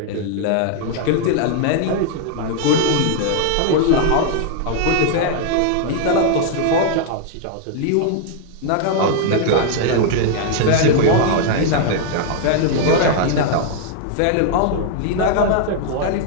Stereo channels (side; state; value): both; different; correlation 0.00